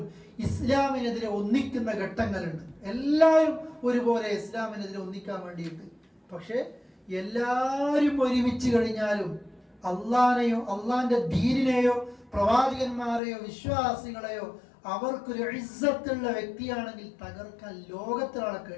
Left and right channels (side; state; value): right; drops out; at 13.2 s